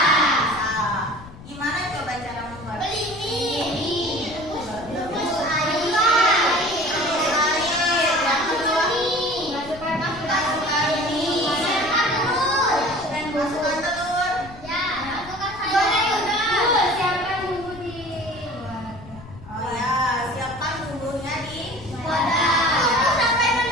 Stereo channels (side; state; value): left; noise; rumble, 17 dB below the sound